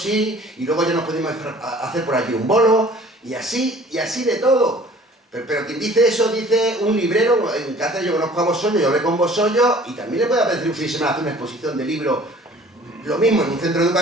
y luego ya nos podemos hacer por allí un bolo, y así de todo. Pero quien dice eso, dice un librero. En Cáceres yo conozco a Bosollo, yo hablé con Bosollo, y también le puede apetecer un fin de semana hacer una exposición de libros, lo mismo en un centro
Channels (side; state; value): both; normal; correlation 0.50